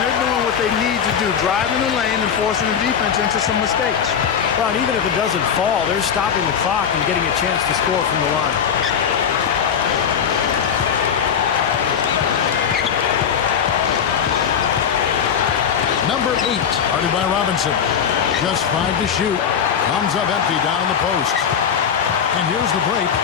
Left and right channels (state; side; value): quieter; right; 7.7 dB